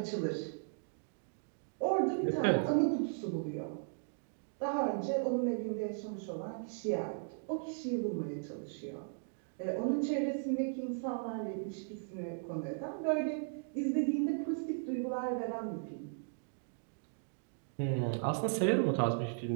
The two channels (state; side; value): silent; left; digital silence